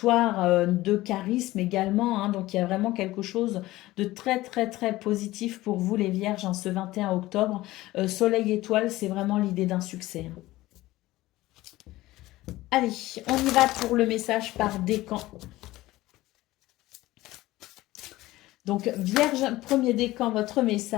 de charisme également, hein. Donc, il y a vraiment quelque chose de très, très, très positif pour vous, les vierges, en ce 21 octobre. Soleil étoile, c'est vraiment l'idée d'un succès, hein. Allez, on y va pour le message par décan. Donc, Vierge, premier décan, votre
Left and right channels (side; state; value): right; quieter; 17.5 dB